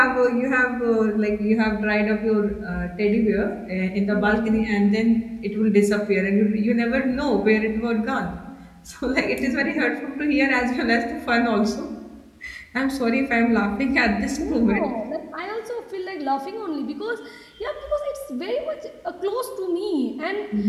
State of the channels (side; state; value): both; identical; correlation 1.00